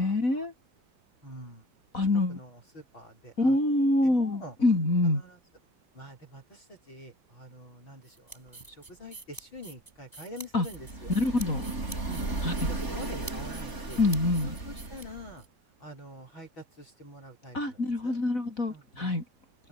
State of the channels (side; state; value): right; late; 2.9 ms